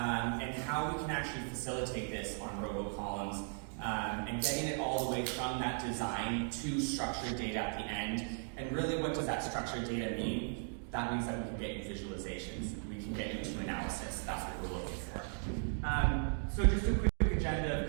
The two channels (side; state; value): left; silent; 53 dB below the other